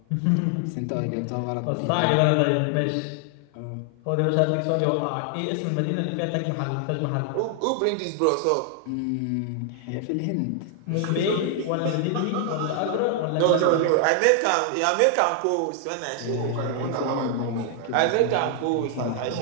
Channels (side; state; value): both; different; correlation 0.00